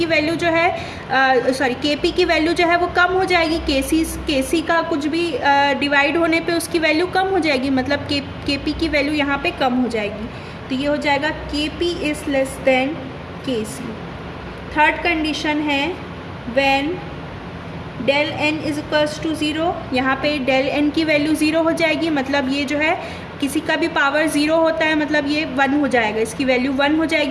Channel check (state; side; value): identical; both; correlation 1.00